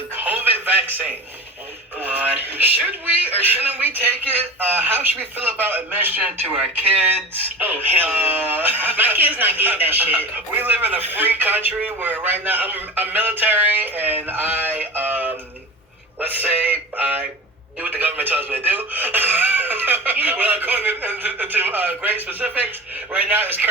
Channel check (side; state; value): both; normal; correlation 0.32